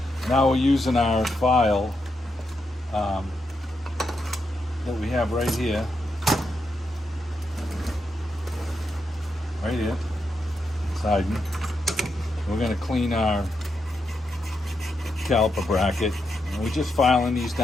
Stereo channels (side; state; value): both; normal; correlation 0.83